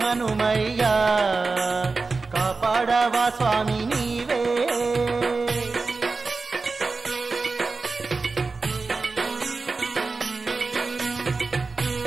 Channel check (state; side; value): quieter; left; 4.0 dB